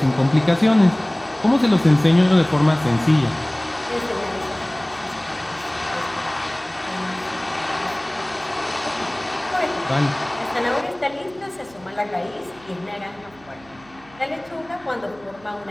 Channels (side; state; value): right; noise; hum, 26 dB below the sound